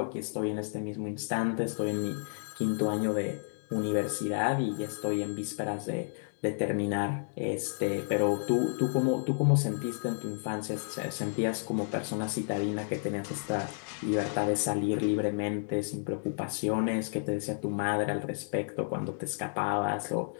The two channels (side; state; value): right; silent; digital silence